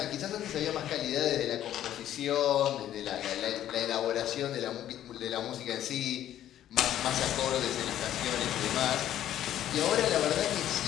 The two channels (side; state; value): right; quieter; 11.8 dB